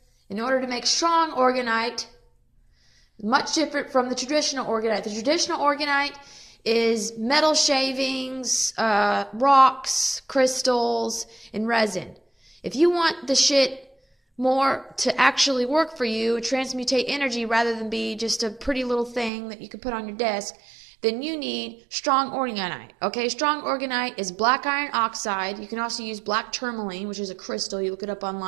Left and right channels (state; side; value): drops out; left; at 19.3 s